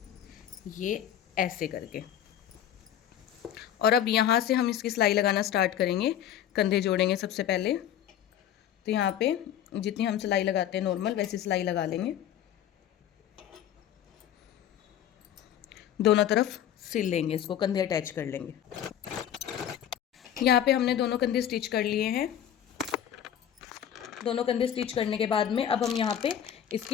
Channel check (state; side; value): quieter; right; 10.2 dB